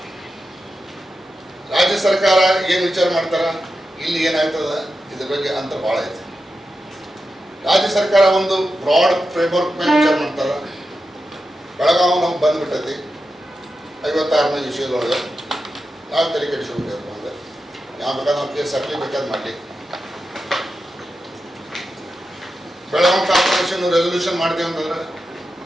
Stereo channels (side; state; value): both; normal; correlation 0.90